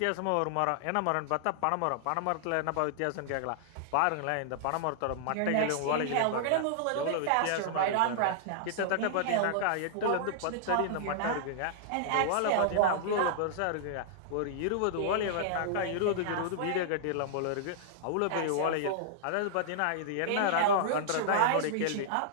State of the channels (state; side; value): different; both; correlation -0.01